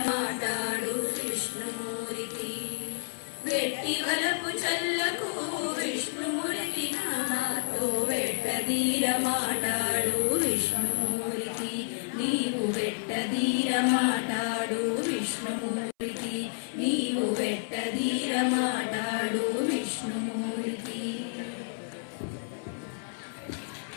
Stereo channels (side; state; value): right; silent; 58 dB below the other